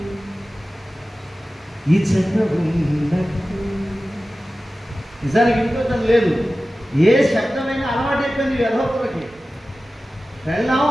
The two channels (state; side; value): normal; both; correlation 0.95